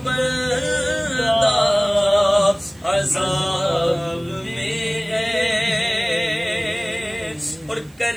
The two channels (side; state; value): right; noise; hiss, 29 dB below the sound